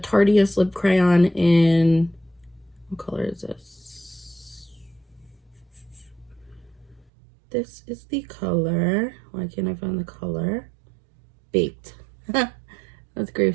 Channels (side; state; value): left; drops out; at 7.1 s